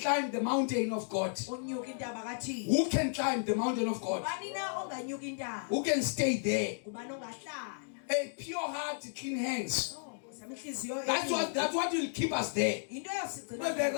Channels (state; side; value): silent; right; digital silence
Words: the mountain of God. Unyuka intaba kaThixo. Who can climb the mountain of God? Ubani na onganyuka intaba? Who can stay there? Ubani ongahlala? A pure heart, clean hands. Samihliziyo. That's what will keep us there. Into But the yosigcina.